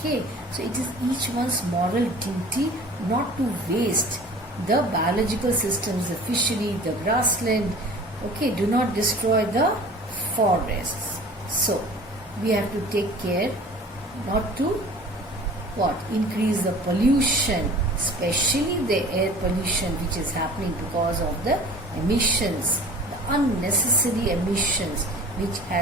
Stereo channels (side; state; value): both; normal; correlation 0.43